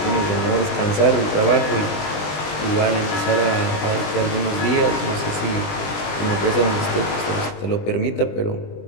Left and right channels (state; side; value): late; right; 20 ms